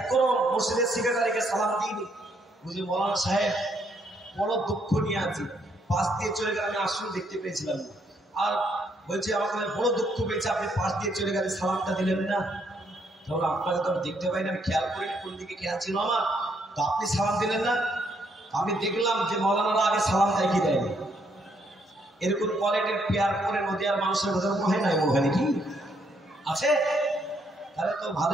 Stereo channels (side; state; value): both; normal; correlation 0.72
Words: মসজিদের সেক্রেটারিকে সালাম দিইনি, বুঝলি মওলানা সাহেব বড় দুঃখ নিয়ে আছি, পাশ দিয়ে চলে গেলে আমি আসলে দেখতে পেয়েছিলাম, আর বলছে আমাকে বড় দুঃখ পেয়েছে, আপনি পাশ দিয়ে চলে গেলে সালামটা দিলেন না। তাহলে আপনাকে তো আমি দেখতে পাই না, আমি খেয়াল করিনি কোন দিকে খেয়াল ছিল আমার, তো আপনি সালাম দিলেন না। আমি দেখলাম যে মওলানারা আগে সালাম দেয় কি দেয়নি। এরকম কোয়ালিটির পেয়ার করে নদীয়ার মানুষের কথা হয় না, ওখানে কি আছে? তাহলে তো